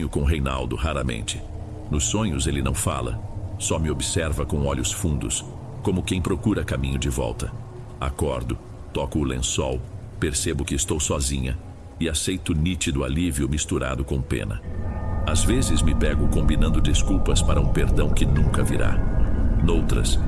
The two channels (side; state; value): both; identical; correlation 1.00